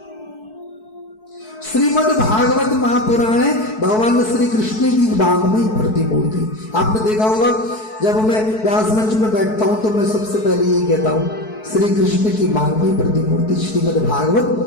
श्रीमद् भागवत महापुराण है भगवान श्री कृष्ण की वाङ्मयी प्रतिमूर्ति। आपने देखा होगा जब मैं व्यास मंच में बैठता हूं तो मैं सबसे पहले ये कहता हूं, श्री कृष्ण की वाङ्मयी प्रतिमूर्ति श्रीमद्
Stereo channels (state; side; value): late; right; 4.6 ms